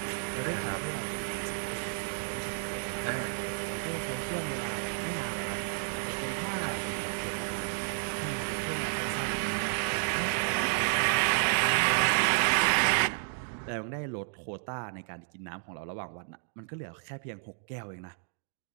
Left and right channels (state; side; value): silent; left; digital silence